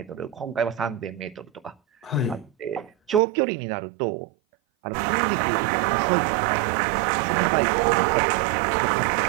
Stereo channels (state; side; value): drops out; left; at 3.2 s